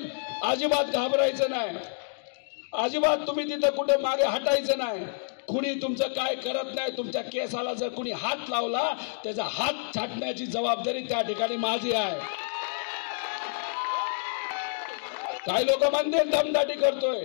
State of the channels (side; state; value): right; silent; digital silence